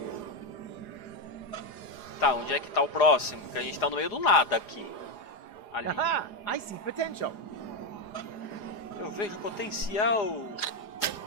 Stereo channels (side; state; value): right; late; 4.9 ms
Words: Tá, onde é que tá o próximo? Porque a gente tá no meio do nada aqui. Ali. Aha! I see potential. Eu vejo potencial.